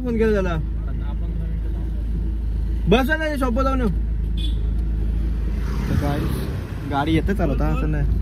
फोन केला त्याला. बस नाही शॉप जाऊन. तर काय गाडी येते चालवता असं नाही.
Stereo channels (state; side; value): identical; both; correlation 1.00